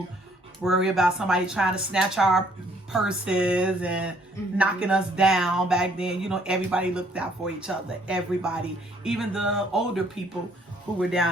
worry about somebody trying to snatch our purses and knocking us down. Back then, you know, everybody looked out for each other. Everybody, even the older people who were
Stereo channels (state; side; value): normal; both; correlation 0.64